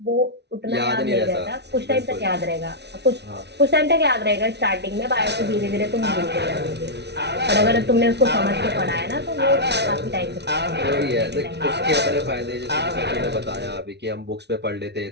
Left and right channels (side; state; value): left; late; 0.50 ms